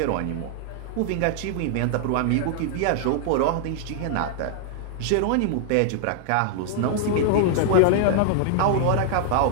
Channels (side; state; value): both; different; correlation -0.01